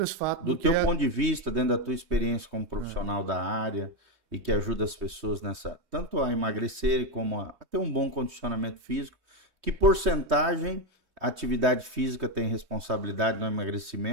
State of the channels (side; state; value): left; late; 3.2 ms